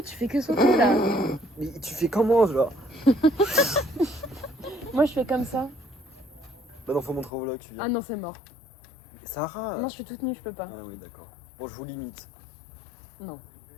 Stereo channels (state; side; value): drops out; right; at 7.3 s